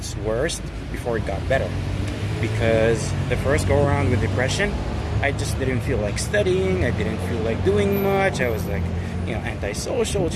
worst before it got better. Because the first go around with depression, I just didn't feel like studying, I didn't feel like doing much, I was antisocial,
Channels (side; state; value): both; identical; correlation 1.00